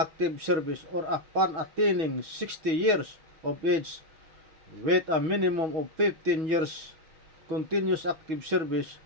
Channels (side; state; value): left; late; 6.2 ms